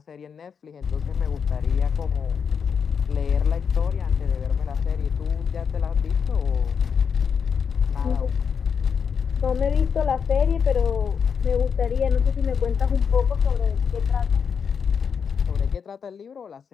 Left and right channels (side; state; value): right; quieter; 6.6 dB